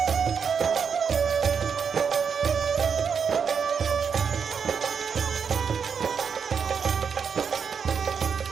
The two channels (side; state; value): left; quieter; 6.5 dB